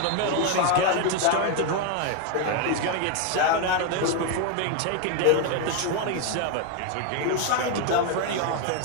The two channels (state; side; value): different; both; correlation 0.01